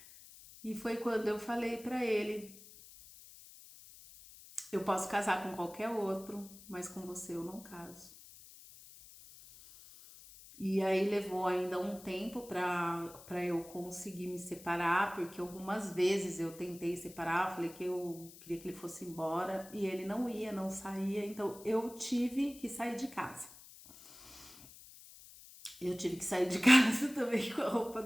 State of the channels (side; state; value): left; noise; hiss, 19 dB below the sound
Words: E foi quando eu falei pra ele: eu posso casar com qualquer outro, mas com você eu não caso. E aí levou ainda um tempo para eu conseguir me separar, porque algumas vezes eu tentei separar, falei que eu queria que ele fosse embora e ele não ia, não saía, então eu tive que sair de casa. Eu tive que sair de casa também com a roupa